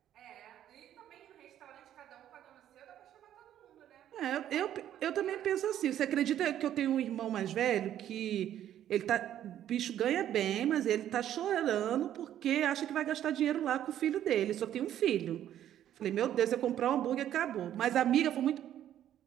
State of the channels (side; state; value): left; quieter; 11.2 dB